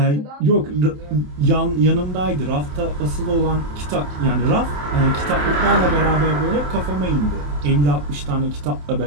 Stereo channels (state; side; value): late; left; 27 ms